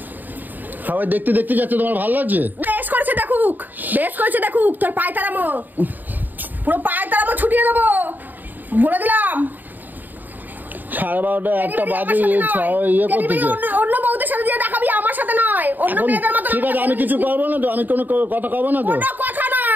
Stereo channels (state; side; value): late; left; 0.088 ms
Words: সবাই দেখতে দেখতে যাচ্ছে, তোমার ভালো লাগছে? বেশ করেছে দেখুক, বেশ করেছে দেখুক। তোর পায়ে তারামো, পুরো পায়ে তারামো ছুটিয়ে দেবো বলে দিলাম। 12:30 একটা বাজে ইয়ে করতেছে। অন্য বউদের সাথে যে দেখাবি, আমার সাথে নয়। অন্য মেয়েদের মতো। ঠিক আছে, আমি কিছু করবো না তো, আমি কোনো কথা কব না তো। কোনো কথা